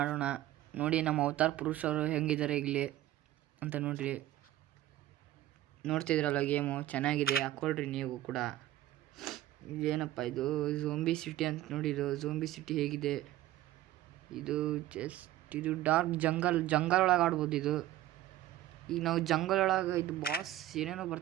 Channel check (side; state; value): left; quieter; 14.4 dB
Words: ಆಡೋಣ. ನೋಡಿ ನಮ್ಮ ಅವತಾರ್ ಪುರುಷರು ಹೆಂಗಿದ್ದಾರೆ ಇಲ್ಲಿ ಅಂತ ನೋಡ್ರಿ. ನೋಡ್ತಿದ್ರಲ್ಲ, ಗೇಮು ಚೆನ್ನಾಗಿದೆ, ಹಾಕ್ಕೊಳ್ರಿ ನೀವು ಕೂಡ. ಇದೇನಪ್ಪ ಇದು ಝೋಂಬಿ ಸಿಟಿ ಅಂತ ನೋಡಿ. ಇದು ಝೋಂಬಿ ಸಿಟಿ ಹೇಗಿದೆ ಇದು? ಇದು ಡಾರ್ಕ್ ಜಂಗಲ್ ಒಳಗೆ ಆಡ್ಬೋದು ಇದು. ಈಗ ನಾವು ಜಂಗಲ್ ಒಳಗೆ ಇದು ಬಾಸ್ ಏನೇನೋ